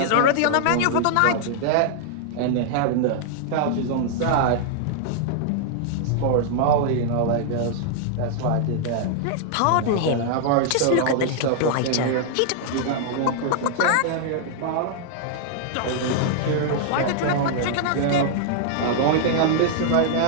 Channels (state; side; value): different; both; correlation -0.01